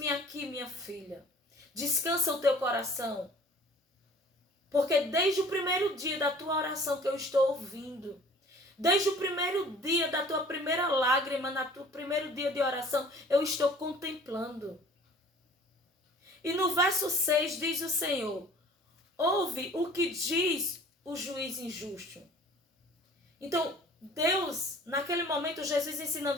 aqui, minha filha. Descansa o teu coração. Porque desde o primeiro dia da tua oração que eu estou ouvindo, desde o primeiro dia da tua primeira lágrima, no teu primeiro dia de oração, eu estou contemplando. E no verso 6 diz o Senhor, ouve o que diz o juiz injusto. Então, Deus, naquele momento, Jesus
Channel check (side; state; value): both; normal; correlation 0.49